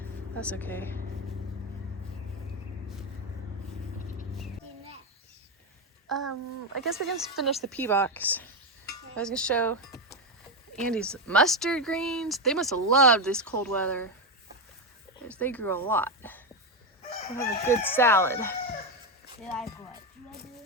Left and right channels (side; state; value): both; normal; correlation 0.10